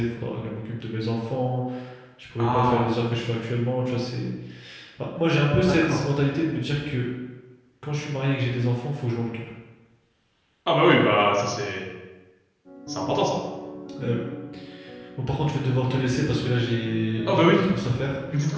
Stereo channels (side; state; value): both; identical; correlation 1.00